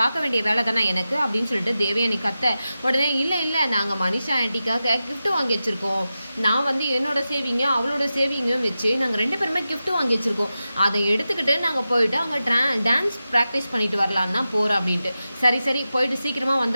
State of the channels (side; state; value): both; inverted; correlation -0.92